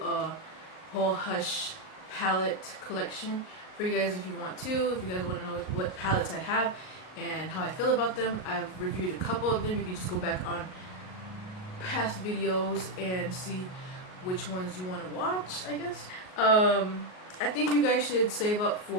whole Hush palette collection for you guys if you want to. If you guys want to know what palettes I have and how I feel about them, I've reviewed a couple of them. You can just go back on past videos and see which ones you want to watch, I guess. I think you guys should save up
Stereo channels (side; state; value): right; late; 38 ms